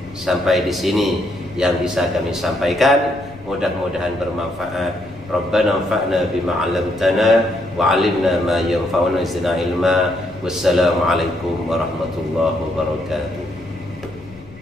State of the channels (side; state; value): left; noise; rumble, 21 dB below the sound